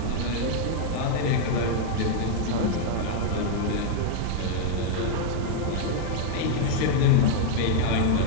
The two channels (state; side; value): different; both; correlation 0.00